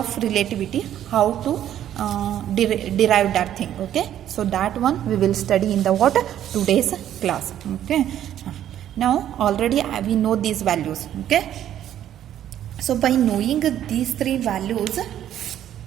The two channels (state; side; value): quieter; left; 11.1 dB